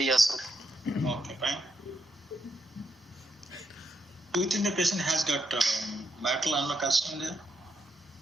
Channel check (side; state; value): both; normal; correlation 0.80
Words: sir. Okay, fine. Do you think the patient has got mitral annular calcium there?